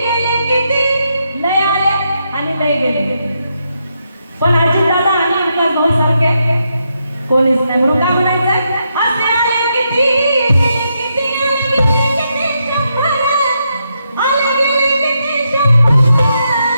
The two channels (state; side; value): inverted; both; correlation -0.81